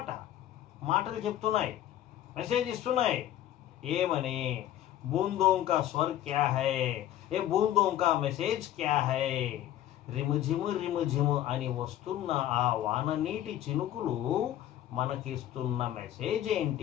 మాటలు చెప్తున్నాయి, మెసేజ్ ఇస్తున్నాయి. ఏమని? బూందోं का स्वर क्या है, ఏ బూందోं का మెసేజ్ క్యా హై. రిముజిము రిముజిము అని వస్తున్న ఆ వాన నీటి చినుకులు మనకిస్తున్న మెసేజ్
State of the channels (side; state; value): right; quieter; 12.6 dB